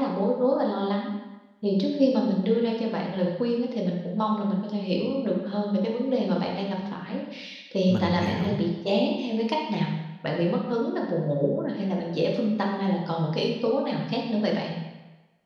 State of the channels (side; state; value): both; identical; correlation 1.00